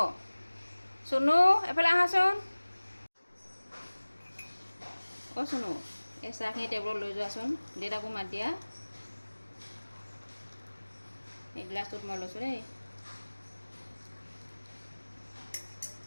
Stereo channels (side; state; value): both; inverted; correlation -1.00